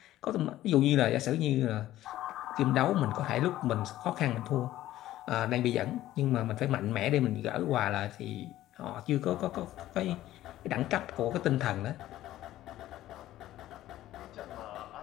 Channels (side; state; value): right; quieter; 14.3 dB